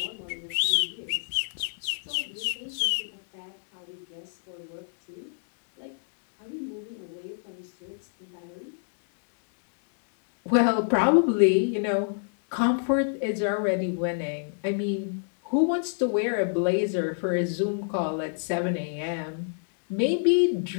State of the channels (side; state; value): right; silent; digital silence